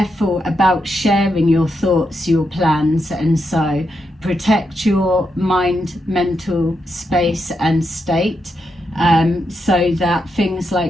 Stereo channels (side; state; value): both; normal; correlation 0.83